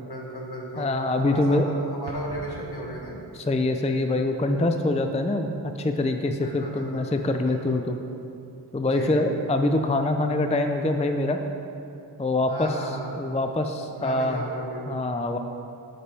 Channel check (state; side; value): normal; both; correlation 0.52